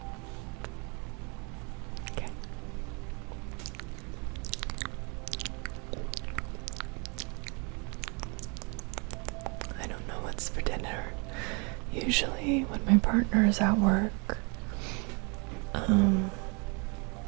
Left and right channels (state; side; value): quieter; left; 32.9 dB